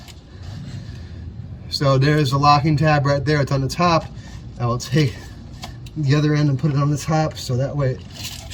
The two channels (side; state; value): both; identical; correlation 1.00